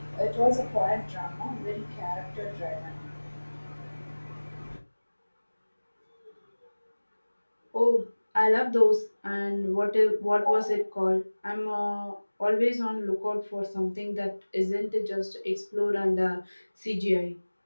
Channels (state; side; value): inverted; both; correlation -1.00